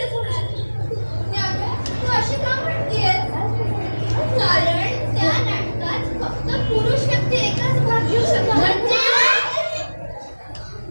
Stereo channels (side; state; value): both; inverted; correlation -1.00